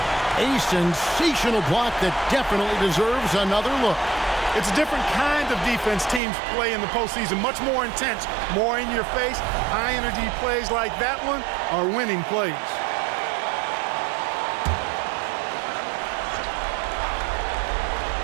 A sensational block that definitely deserves another look. It's a different kind of defense teams play in the postseason. Much more intense, more in your face. High-energy plays like that one are winning plays.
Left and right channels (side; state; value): left; drops out; at 6.2 s